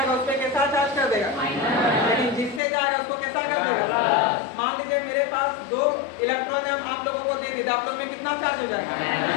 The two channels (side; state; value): right; drops out; at 2.6 s